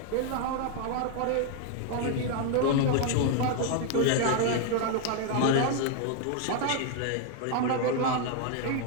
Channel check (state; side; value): different; both; correlation 0.00